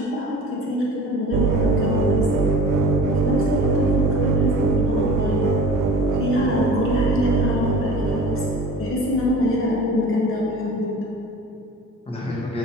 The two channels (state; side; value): normal; both; correlation 0.40